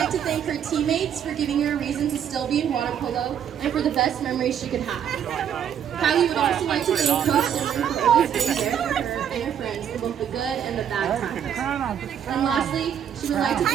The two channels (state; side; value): quieter; left; 8.9 dB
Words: to thank her teammates for giving her a reason to still be in water polo and for the best memories she could have. Kylie would also like to thank Coach Simran for always being there for her and her friends for both the good and the bad times. And lastly, she would like to